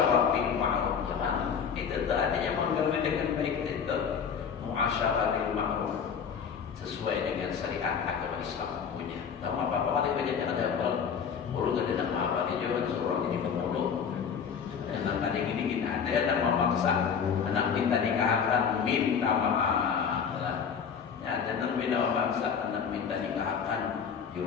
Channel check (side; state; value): right; quieter; 6.9 dB